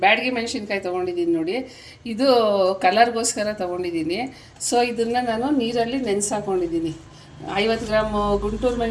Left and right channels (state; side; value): identical; both; correlation 1.00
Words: ಬ್ಯಾಡಗಿ ಮೆಣಸಿನ್ಕಾಯಿ ತೊಗೊಂಡಿದ್ದೀನಿ. ನೋಡಿ, ಇದು ಕಲರ್ಗೋಸ್ಕರ ತೊಗೊಂಡಿದ್ದೀನಿ. ಸೊ ಇದನ್ನು ನಾನು ನೀರಲ್ಲಿ ನೆನೆಸಾಕೊಂಡಿದ್ದೀನಿ. 50 ಗ್ರಾಮ್ ಗುಂಟೂರು